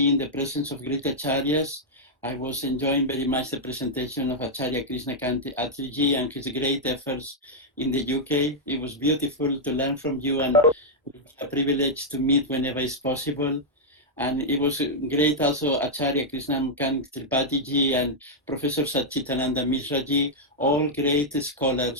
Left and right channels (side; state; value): both; normal; correlation -0.05